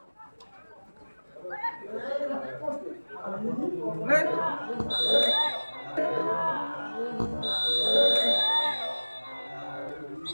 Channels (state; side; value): inverted; both; correlation -1.00